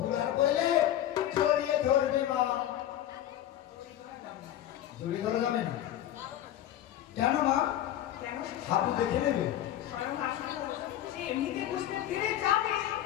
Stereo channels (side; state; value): right; quieter; 12.1 dB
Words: বলে জড়িয়ে ধরবে মা। জড়িয়ে ধরা যাবে না কেন মা? হাবু দেখে নেবে।